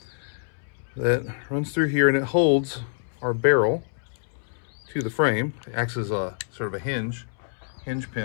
that runs through here, and it holds our barrel to the frame. It acts as a sort of a hinge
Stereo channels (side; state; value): right; silent; 61 dB below the other